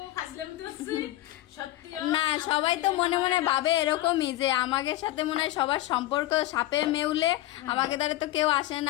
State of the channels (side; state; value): right; quieter; 15.9 dB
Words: না, সবাই তো মনে মনে ভাবে এরকমই যে আমাদের সাথে মনে হয় সবার সম্পর্ক সাপে মেউলে, আমাকে দ্বারা তো কেউ আসে